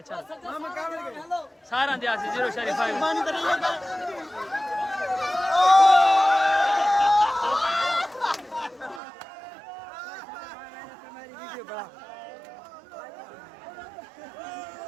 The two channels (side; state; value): left; drops out; at 9.0 s